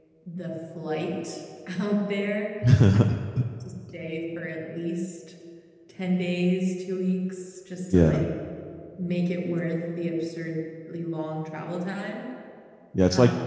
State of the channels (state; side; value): identical; both; correlation 1.00